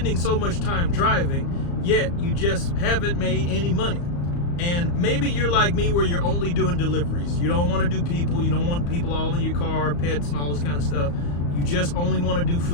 so much time driving, yet you just haven't made any money. And maybe you're like me, where you're only doing deliveries. You don't want to do people. You don't want people all in your car, pets, and all this kind of stuff. You just only want to do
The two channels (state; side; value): late; right; 35 ms